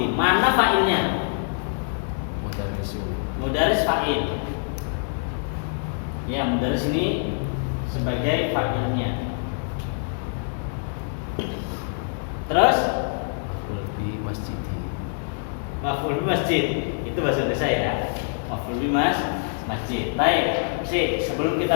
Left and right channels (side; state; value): right; silent; 62 dB below the other